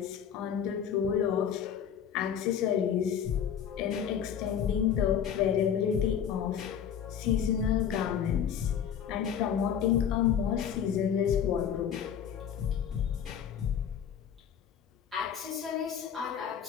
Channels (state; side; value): quieter; right; 8.5 dB